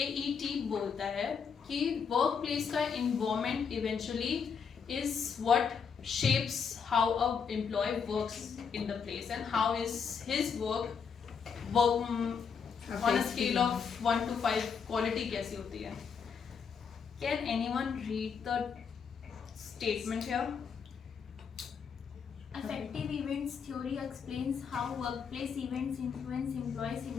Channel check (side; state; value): right; quieter; 6.3 dB